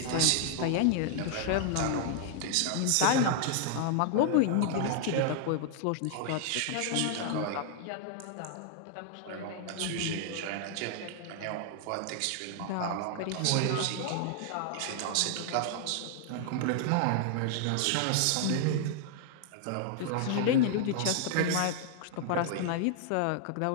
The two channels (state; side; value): different; both; correlation 0.00